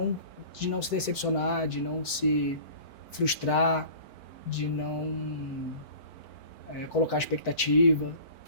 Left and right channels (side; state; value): right; late; 4.5 ms